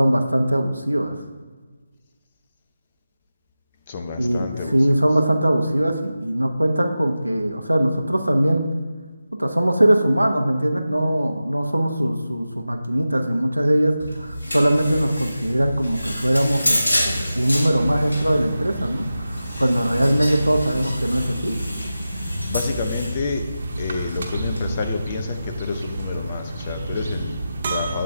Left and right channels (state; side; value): inverted; both; correlation -0.93